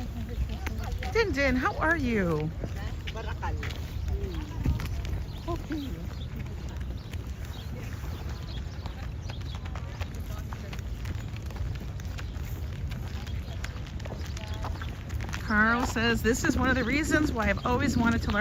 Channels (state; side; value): identical; both; correlation 1.00